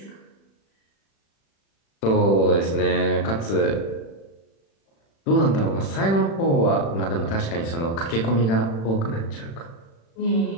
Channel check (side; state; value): right; late; 36 ms